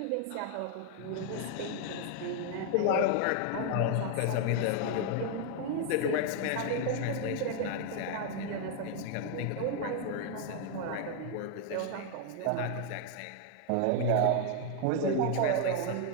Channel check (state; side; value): different; both; correlation 0.00